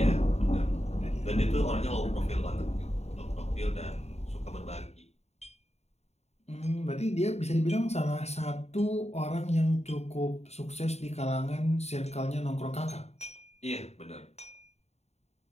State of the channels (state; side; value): late; right; 0.31 ms